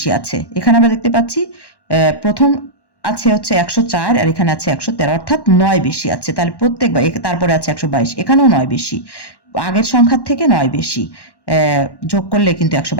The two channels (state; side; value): late; right; 1.1 ms